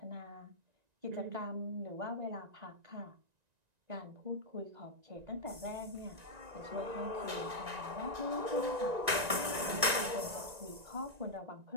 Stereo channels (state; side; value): late; left; 1.9 ms